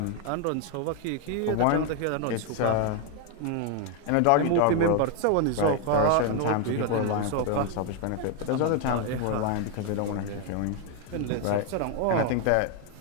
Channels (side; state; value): both; different; correlation 0.01